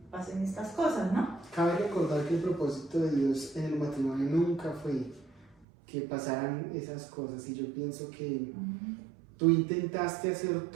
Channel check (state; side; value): drops out; left; at 5.7 s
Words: pasen estas cosas, ¿no? Cabe recordar que el propósito de Dios en el matrimonio nunca fue que pasaran esas cosas, y yo pienso que tú intentaste hacer